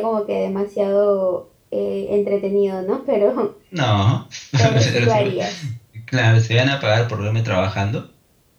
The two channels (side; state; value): both; identical; correlation 1.00